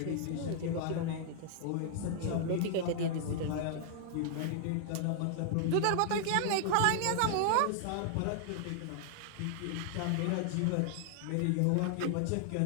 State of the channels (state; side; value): different; both; correlation -0.01